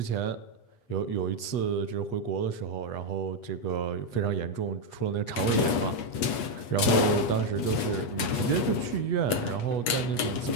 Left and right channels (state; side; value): late; right; 8.3 ms